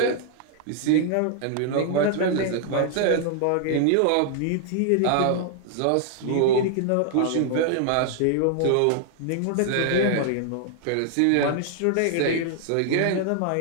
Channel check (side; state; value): both; different; correlation 0.00